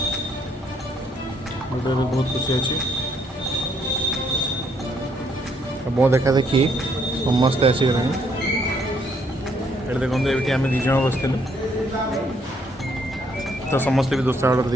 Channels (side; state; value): both; normal; correlation 0.70